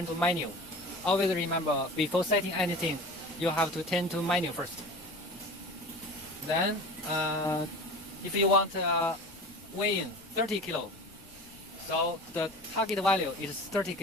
to menu. Always remember, before setting anything, you have to turn to menu first. Then, if you want weigh in 30 kilo, so the target value is 30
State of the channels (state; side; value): noise; left; rumble, 24 dB below the sound